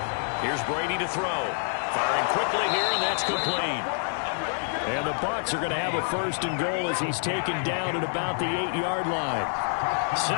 Here's Brady to throw. Firing quickly here, and that's complete. And the Bucs are going to have a 1st and goal as he's taken down at about the 8-yard line.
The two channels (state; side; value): silent; right; digital silence